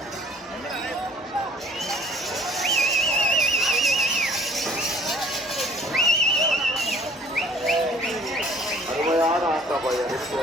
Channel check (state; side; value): normal; both; correlation 0.55